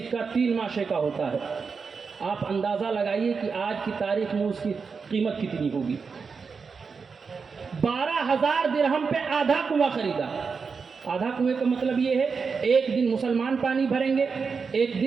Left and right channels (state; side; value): quieter; left; 5.3 dB